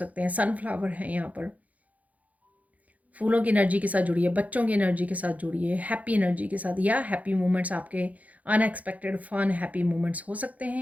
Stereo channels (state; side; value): late; left; 0.072 ms